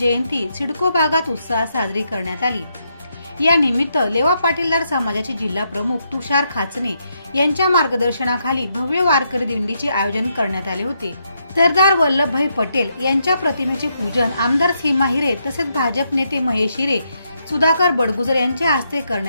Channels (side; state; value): both; inverted; correlation -0.79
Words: सिडको भागात उत्साहात साजरी करण्यात आली। या निमित्त लेवा पाटीलदार समाजाचे जिल्हा प्रमुख तुषार खाचने यांच्या मार्गदर्शनाखाली भव्य वारकरी दिंडीचे आयोजन करण्यात आले होते। सरदार वल्लभभाई पटेल यांच्या प्रतिमेचे पूजन आमदार सीमा हिरे तसेच भाजप नेते महेश हिरे, सुधाकर बडगुजर यांच्या हस्ते